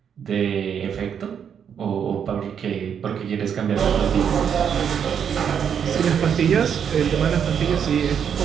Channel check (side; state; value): left; quieter; 7.9 dB